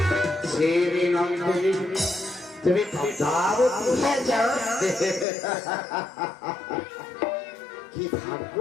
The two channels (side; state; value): right; drops out; at 5.2 s